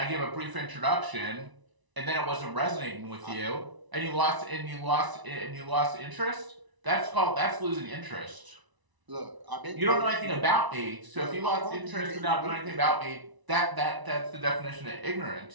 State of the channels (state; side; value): late; left; 1.0 ms